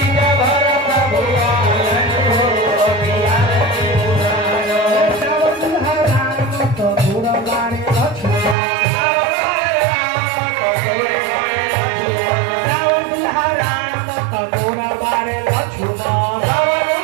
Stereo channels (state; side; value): drops out; left; at 8.6 s